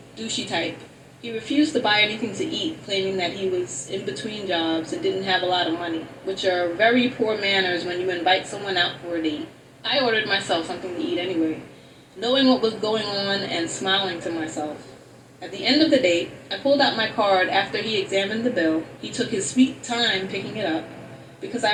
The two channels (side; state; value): both; identical; correlation 1.00